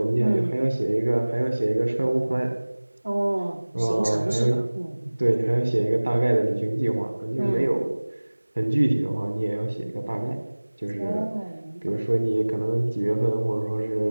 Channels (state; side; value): inverted; both; correlation -1.00